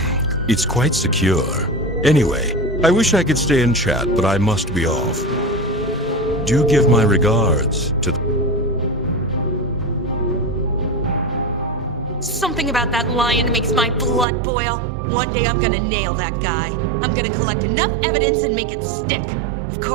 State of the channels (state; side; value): drops out; left; at 14.2 s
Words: it's quite secure. Anyway, I wish I could stay and chat, but I must be off. Do give my regards to the... Something about that lion makes my blood boil. One day I'm gonna nail that guy. I'm gonna collect enough evidence and make it stick. Of